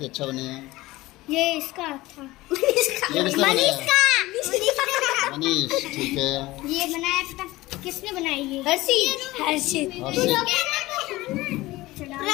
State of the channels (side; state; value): right; quieter; 18.9 dB